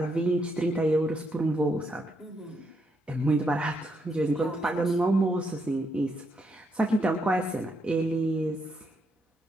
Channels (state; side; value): normal; both; correlation 0.78